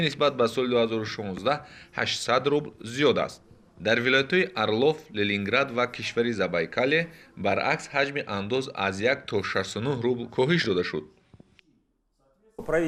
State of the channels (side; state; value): both; identical; correlation 1.00